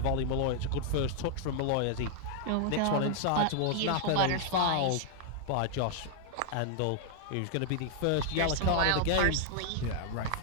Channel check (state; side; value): different; both; correlation 0.00